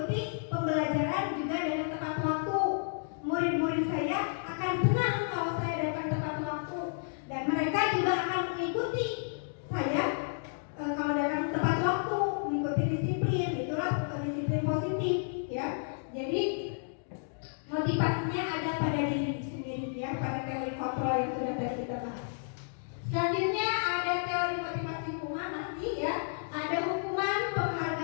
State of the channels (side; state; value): right; silent; digital silence